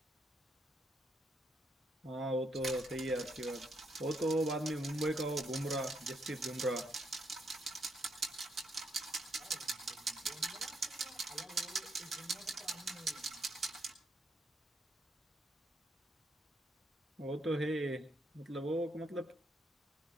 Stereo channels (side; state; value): both; normal; correlation 0.75